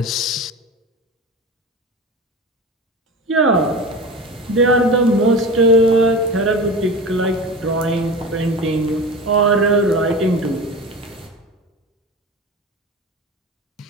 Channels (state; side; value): normal; both; correlation 0.30